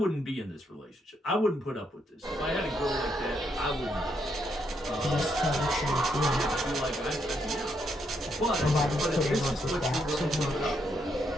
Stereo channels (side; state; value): both; normal; correlation 0.77